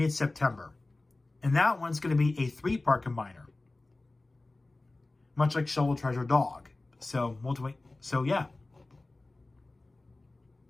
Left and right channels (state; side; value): quieter; right; 3.0 dB